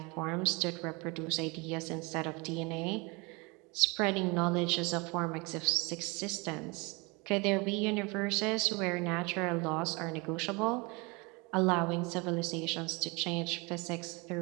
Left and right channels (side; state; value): left; quieter; 27.6 dB